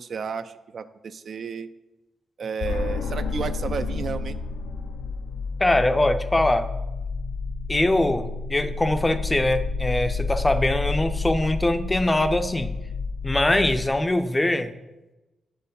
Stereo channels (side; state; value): both; normal; correlation 0.93